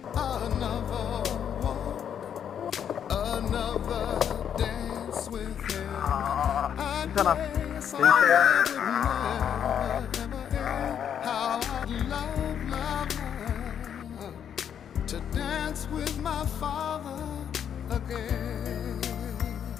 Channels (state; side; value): quieter; right; 8.7 dB